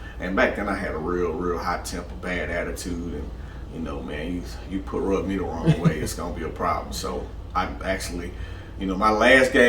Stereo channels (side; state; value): both; identical; correlation 1.00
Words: and back then I had a real hot temper, bad attitude, and man, you rub me the wrong way, it's gonna be a problem. So I actually, my last